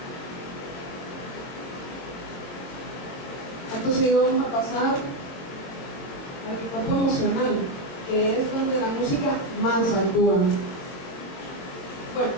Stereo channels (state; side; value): late; right; 22 ms